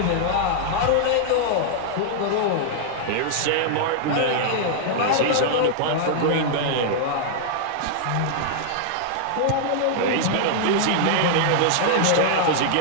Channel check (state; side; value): different; both; correlation -0.01